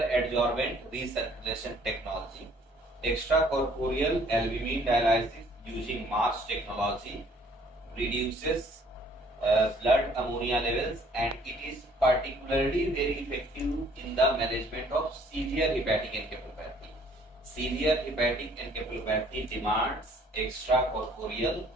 adsorbent recirculation technology. Extracorporeal albumin dialysis using MARS technology reduces blood ammonia levels, and it is particularly very effective in the management of severe hepatic encephalopathy. Severe hepatic encephalopathy demands extracorporeal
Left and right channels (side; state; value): both; normal; correlation 0.59